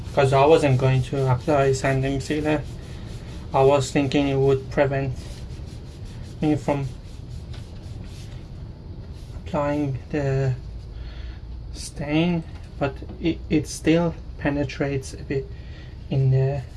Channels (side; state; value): both; identical; correlation 1.00